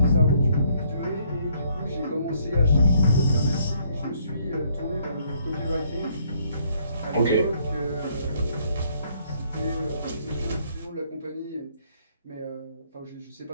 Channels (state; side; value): inverted; both; correlation -0.67